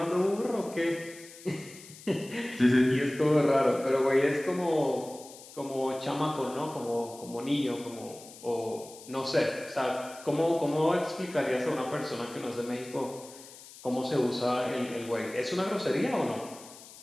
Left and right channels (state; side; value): noise; left; hiss, 18 dB below the sound